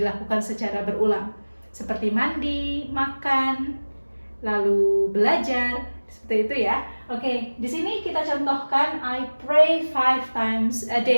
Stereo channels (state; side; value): inverted; both; correlation -1.00